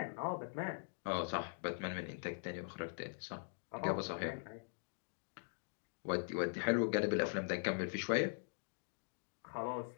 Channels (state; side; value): silent; right; digital silence